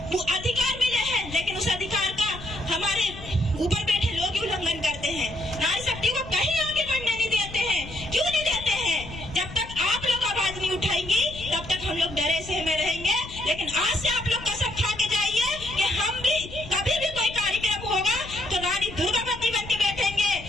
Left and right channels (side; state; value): left; noise; rumble, 14 dB below the sound